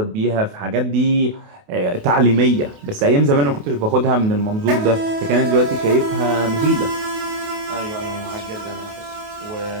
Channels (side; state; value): left; late; 28 ms